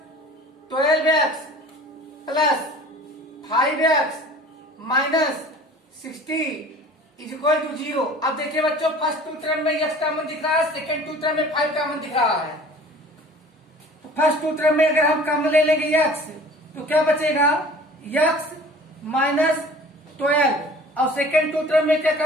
12x plus 5x minus 60 is equal to 0। अब देखिए बच्चों फर्स्ट टू टर्म में x कॉमन दिख रहा है, सेकेंड टू टर्म में 5 कॉमन दिख रहा है, तो फर्स्ट टू टर्म में अगर हम कॉमन ले लेंगे x तो क्या बचेगा x माइनस 12 और सेकेंड टू टर्म में क्या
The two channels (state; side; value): normal; both; correlation 0.46